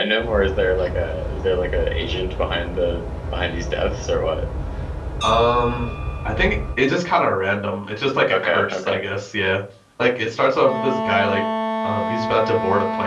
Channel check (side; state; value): both; identical; correlation 1.00